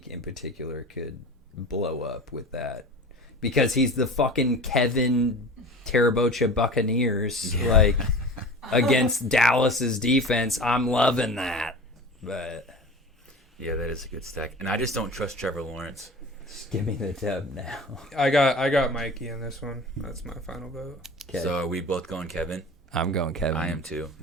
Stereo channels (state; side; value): normal; both; correlation 0.36